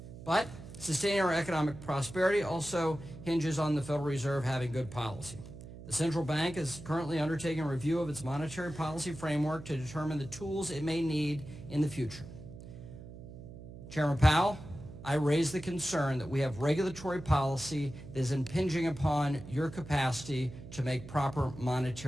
But sustaining our economic prosperity also hinges on the Federal Reserve having good policy. The central bank is currently undertaking a review of its monetary policy framework to determine the tools it may need in the future. Chairman Powell, I raise the concern that we have regulatory policy that is impinging upon your capacity to make proper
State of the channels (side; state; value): right; noise; hum, 14 dB below the sound